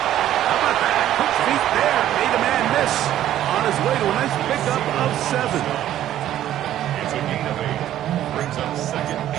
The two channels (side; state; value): left; quieter; 12.3 dB